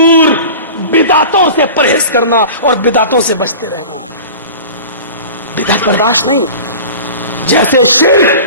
بدعتوں سے پرہیز کرنا اور بدعتوں سے بچتے رہنا. بدعت برداشت نہیں. جیسے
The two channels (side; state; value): both; inverted; correlation -0.37